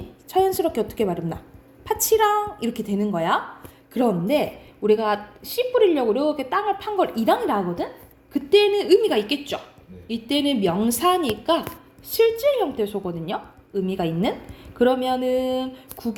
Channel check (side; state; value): both; identical; correlation 1.00